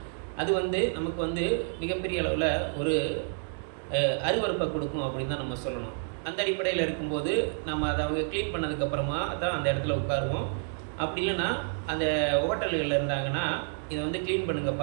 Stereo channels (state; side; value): silent; left; digital silence